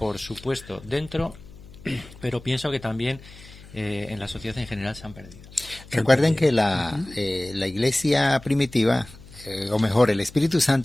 supuesto, dentro, pero pienso que también en la sociedad en general se han perdido. Recuerden que la iglesia primitiva, o mejor, el Espíritu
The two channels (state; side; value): noise; left; hum, 19 dB below the sound